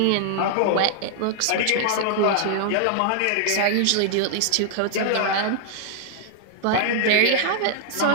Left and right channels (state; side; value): different; both; correlation -0.01